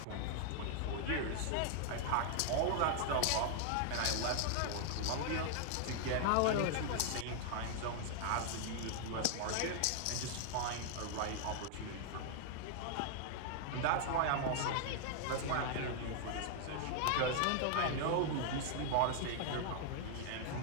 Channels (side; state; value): both; different; correlation 0.00